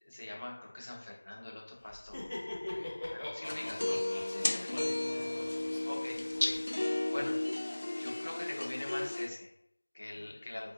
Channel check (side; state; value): both; inverted; correlation -1.00